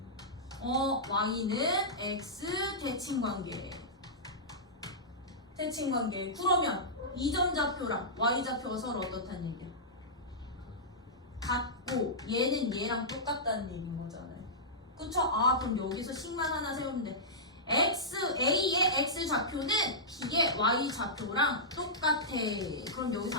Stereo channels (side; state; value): both; normal; correlation -0.14